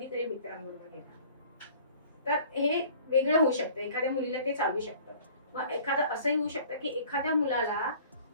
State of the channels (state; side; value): inverted; both; correlation -0.49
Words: मित्रांबरोबर गेला, तर हे वेगळं होऊ शकतं. एखाद्या मुलीला ते चालू शकतं. मग एखादं असंही होऊ शकतं की एखाद्या मुलाला